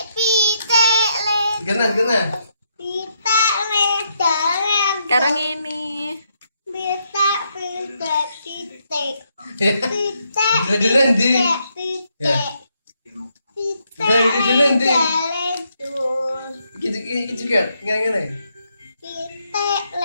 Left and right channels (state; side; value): inverted; both; correlation -0.77